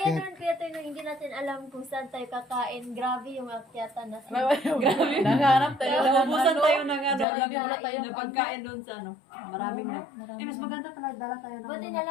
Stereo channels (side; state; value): right; drops out; at 7.2 s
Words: naman kaya tayo nung hindi natin alam kung saan tayo kakain. Grabe yung akyatan na Grabe. Naghanap tayo. Naubusan tayo ng Jollibee. na pagkain doon sa Maraming mas maganda talaga dala tayo ng Buti na